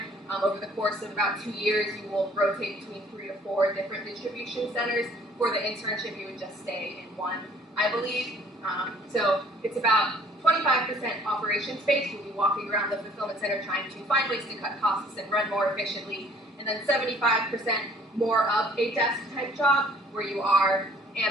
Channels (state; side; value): normal; both; correlation 0.57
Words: Over the course of about 2 years, you will rotate between 3 to 4 different distribution centers. For the internship, you would just stay in one, I believe. So it's about 25% operation space. You'll be walking around the fulfillment center trying to find ways to cut costs and run more efficiently. And then 75% more of a desk type job where you are